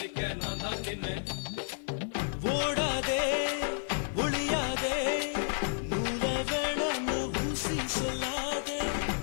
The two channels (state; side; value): silent; right; digital silence